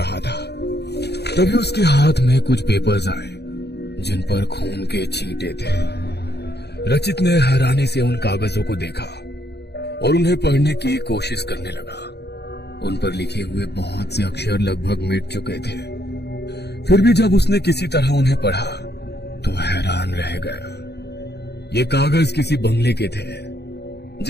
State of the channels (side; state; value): right; late; 0.48 ms